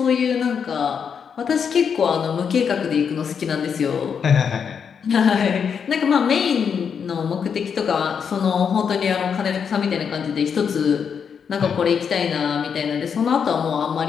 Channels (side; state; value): right; quieter; 6.9 dB